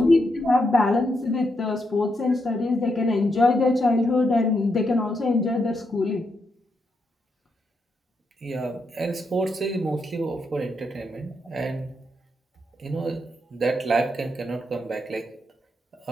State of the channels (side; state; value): both; normal; correlation 0.81